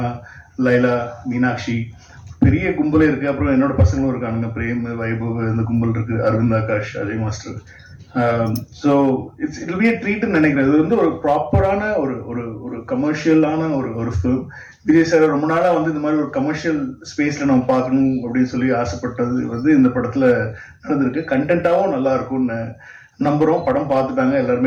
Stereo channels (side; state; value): both; identical; correlation 1.00